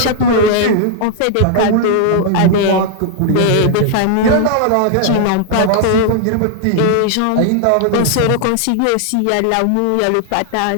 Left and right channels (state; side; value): different; both; correlation 0.00